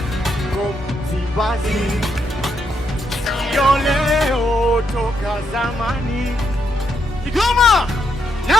Msimbazi yoleo toka zamani. Kigoma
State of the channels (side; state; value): both; normal; correlation 0.78